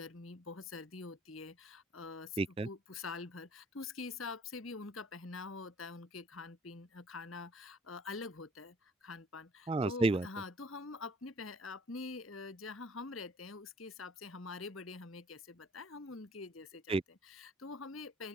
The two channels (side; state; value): both; normal; correlation 0.57